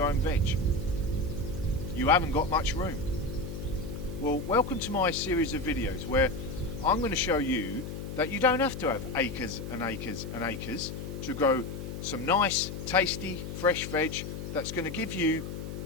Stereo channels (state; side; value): noise; left; hum, 7 dB below the sound